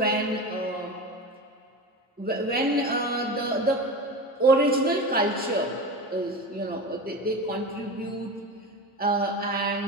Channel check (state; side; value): normal; both; correlation 0.26